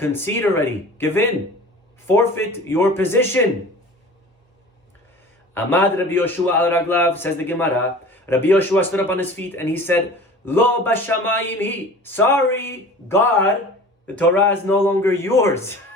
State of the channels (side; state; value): both; normal; correlation 0.41